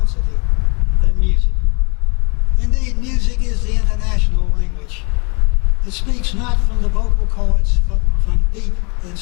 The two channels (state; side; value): quieter; right; 31.9 dB